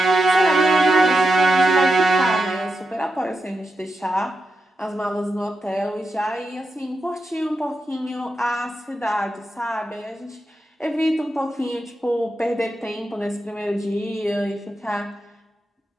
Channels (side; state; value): both; normal; correlation 0.87